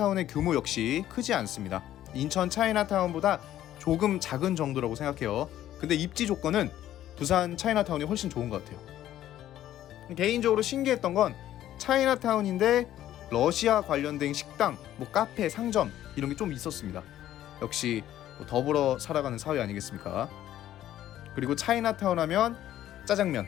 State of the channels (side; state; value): right; quieter; 12.6 dB